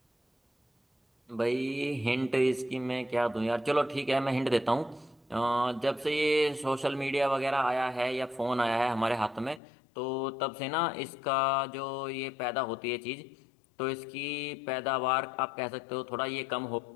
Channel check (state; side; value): drops out; right; at 9.6 s